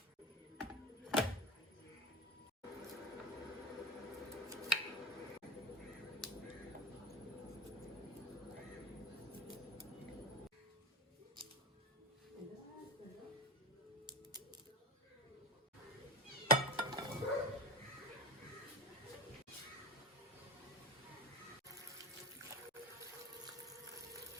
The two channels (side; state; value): both; normal; correlation 0.26